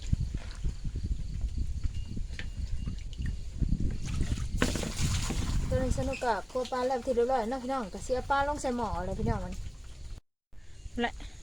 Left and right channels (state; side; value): identical; both; correlation 1.00